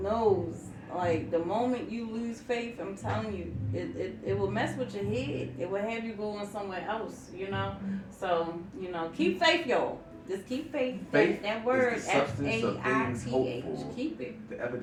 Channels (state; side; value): identical; both; correlation 1.00